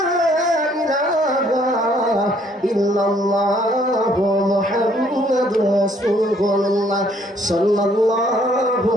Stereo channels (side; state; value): both; normal; correlation 0.64